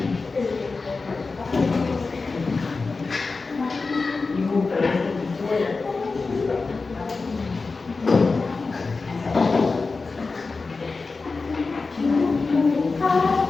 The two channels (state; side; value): quieter; right; 4.1 dB